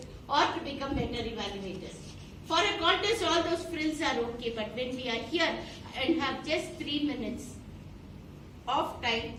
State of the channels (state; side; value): identical; both; correlation 1.00